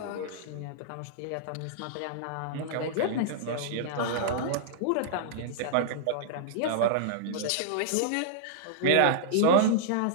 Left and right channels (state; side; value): different; both; correlation -0.02